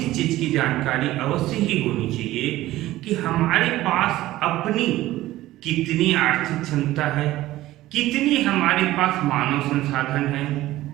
चीज की जानकारी अवश्य ही होनी चाहिए कि हमारे पास अपनी कितनी आर्थिक क्षमता है, कितनी हमारे पास मानव संसाधन है,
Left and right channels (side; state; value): left; quieter; 15.9 dB